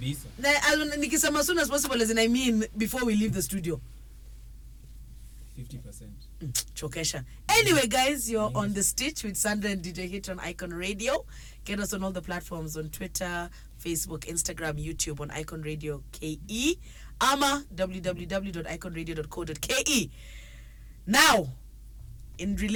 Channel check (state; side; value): identical; both; correlation 1.00